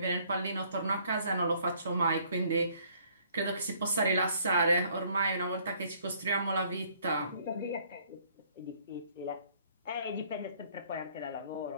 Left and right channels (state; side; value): inverted; both; correlation -0.62